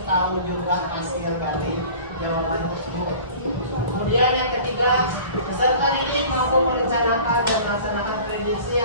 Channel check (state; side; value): inverted; both; correlation -0.43